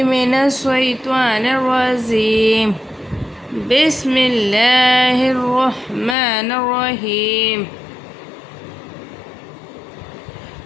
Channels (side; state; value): right; drops out; at 6.2 s